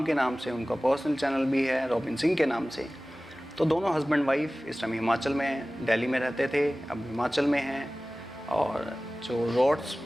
के नाम से, उनका पर्सनल चैनल भी है रॉबिन सिंह के नाम से। तो दोनों हस्बैंड वाइफ इस टाइम हिमाचल में हैं, दिल्ली में रहते थे, अब हिमाचल में हैं। और जो रोड्स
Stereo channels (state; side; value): normal; both; correlation 0.97